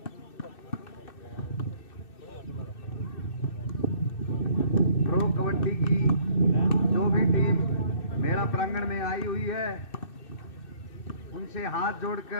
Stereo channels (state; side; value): late; right; 2.6 ms